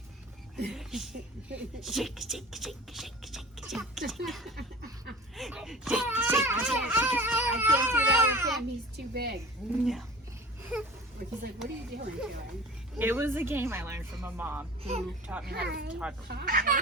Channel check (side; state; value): both; normal; correlation 0.39